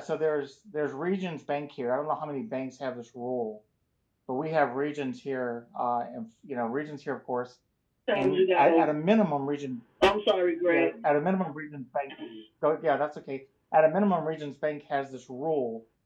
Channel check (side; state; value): both; identical; correlation 1.00